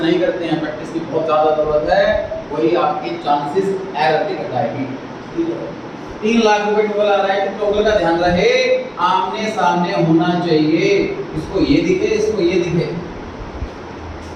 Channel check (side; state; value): both; identical; correlation 1.00